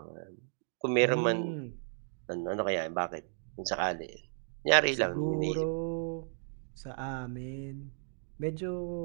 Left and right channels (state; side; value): silent; left; digital silence